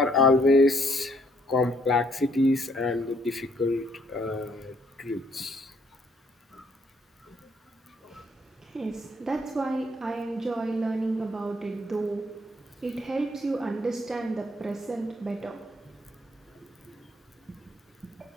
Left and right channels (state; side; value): normal; both; correlation 0.67